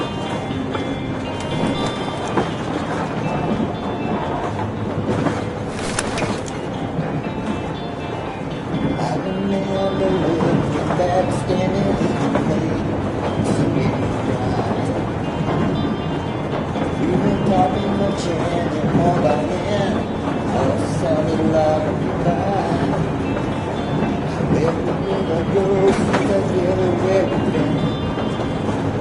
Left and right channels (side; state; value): both; identical; correlation 1.00